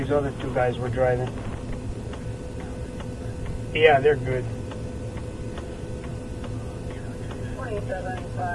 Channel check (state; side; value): identical; both; correlation 1.00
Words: other two guys were driving. Yeah, they're good.